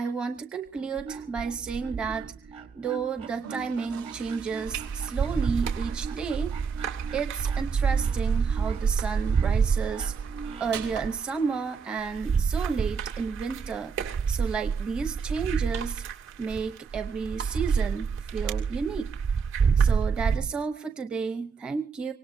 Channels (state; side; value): quieter; left; 5.6 dB